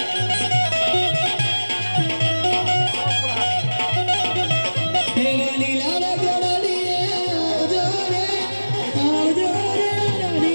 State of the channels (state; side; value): inverted; both; correlation -1.00